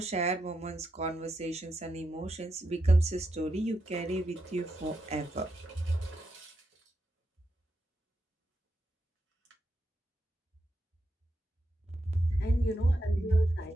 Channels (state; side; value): normal; both; correlation 0.84